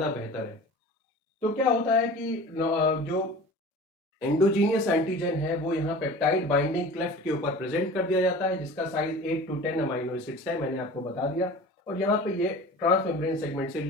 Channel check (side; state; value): both; normal; correlation 0.39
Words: बेहतर है। तो क्या होता है कि जो एंडोजीनियस एंटीजन है वो यहाँ पेप्टाइड बाइंडिंग क्लेफ्ट के ऊपर प्रेजेंट कर दिया जाता है, जिसका साइज 8 to 10 अमाइनो एसिड्स है, मैंने आपको बता दिया। और यहाँ पे ये ट्रांस मेम्ब्रेन सेगमेंट से